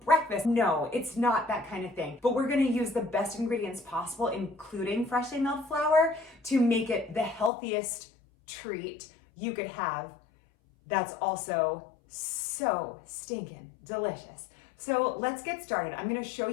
breakfast. No, it's not that kind of thing. But we're gonna use the best ingredients possible, including freshly milled flour, to make it the healthiest treat you could have that's also so stinking delicious. So let's get started. I'm gonna show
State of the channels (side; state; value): right; drops out; at 7.5 s